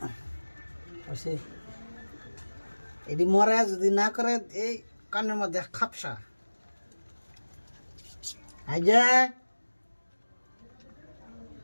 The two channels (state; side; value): inverted; both; correlation -1.00